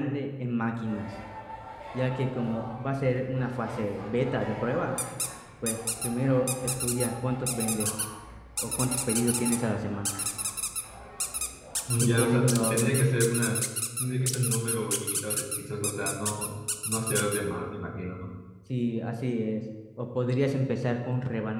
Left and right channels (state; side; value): identical; both; correlation 1.00